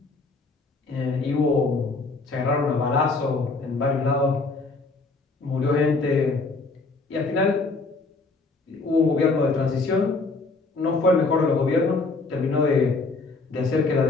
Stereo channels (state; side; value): quieter; right; 3.7 dB